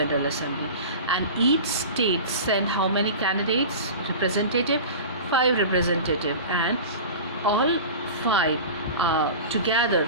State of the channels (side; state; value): both; inverted; correlation -0.33